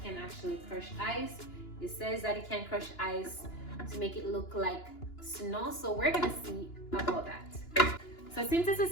can actually crush ice. It says that it can crush ice to make it look like snow, so we're gonna see about that. So since this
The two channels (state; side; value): late; right; 2.9 ms